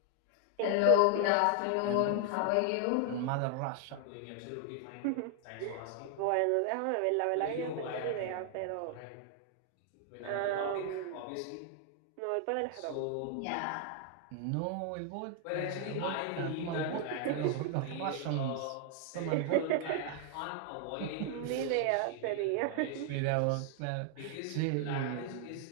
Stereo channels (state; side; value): different; both; correlation 0.00